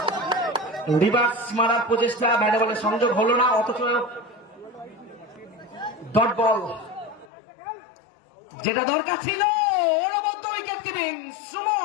রিভার্স মারার প্রচেষ্টা, ব্যাটে বলে সংযোগ হলো না, অথচ ডট বল যেটা দরকার ছিল। অনবদ্য উইকেট কিপিং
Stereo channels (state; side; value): drops out; right; at 7.3 s